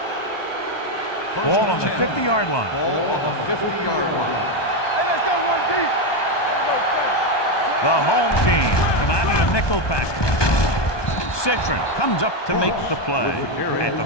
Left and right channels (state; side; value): late; right; 1.2 ms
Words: Ball on the 50-yard line. Ball on the 50-yard line. Hey, let's go one deep. The home team come out in a nickel package. Citron comes up to make the play at the